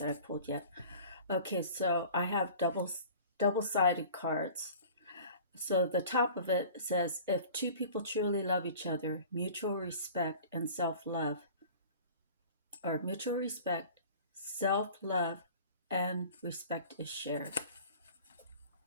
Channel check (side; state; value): both; inverted; correlation -0.43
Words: that I pulled yet. Okay, so I have double-sided cards. So the top of it says, if two people truly love each other, mutual respect and self-love, or mutual respect, self-love, and respect is shared.